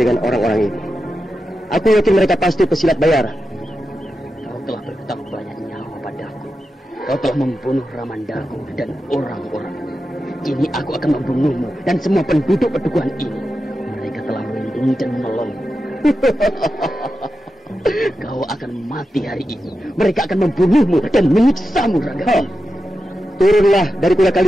orang-orang ini. Aku yakin mereka pasti pesilat bayaran. Kau telah berhutang banyak nyawa padaku. Kau telah membunuh Ramandaku dan orang-orangnya. Kini aku akan membunuhmu dan semua penduduk pedukuhan ini. Mereka telah melindungi dan menolongmu. Kau akan mati hari ini. Mereka akan membunuhmu dan menyiksamu, Rangga. Turunlah dari kuda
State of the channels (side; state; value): both; normal; correlation 0.90